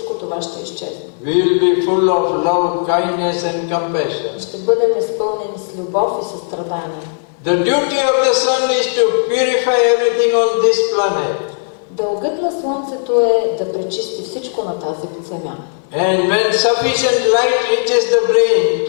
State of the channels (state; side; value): silent; right; digital silence